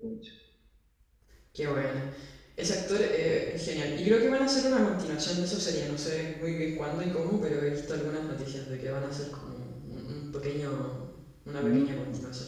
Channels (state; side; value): identical; both; correlation 1.00